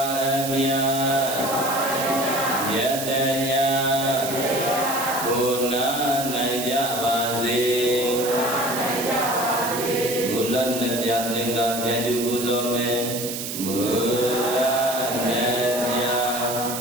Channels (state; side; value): noise; right; hiss, 6 dB below the sound